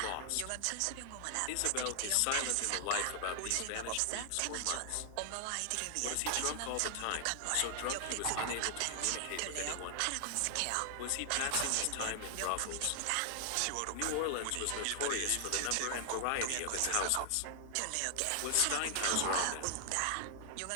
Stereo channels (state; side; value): different; both; correlation 0.00